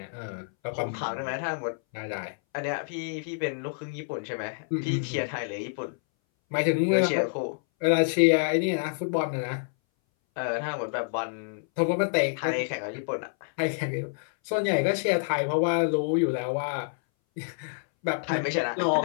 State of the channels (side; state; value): right; silent; 59 dB below the other